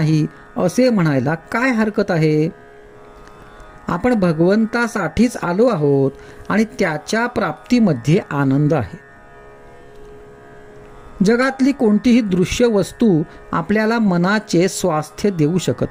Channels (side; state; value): both; identical; correlation 1.00